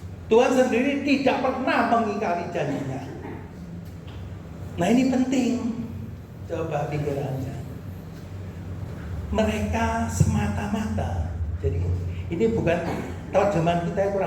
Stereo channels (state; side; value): identical; both; correlation 1.00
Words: Tuhan sendiri tidak pernah mengingkari janjinya. Nah ini penting. Coba pikirannya. Mereka semata-mata. Jadi ini bukan terjemahan kita yang